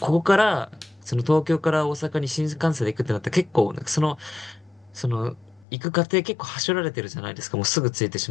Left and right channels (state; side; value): drops out; right; at 5.7 s